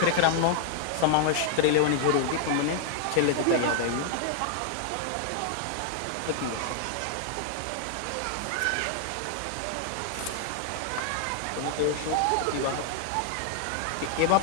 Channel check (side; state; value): both; different; correlation 0.00